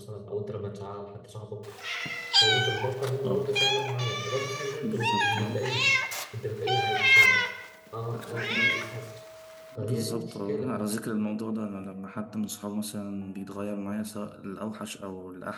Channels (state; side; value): identical; both; correlation 1.00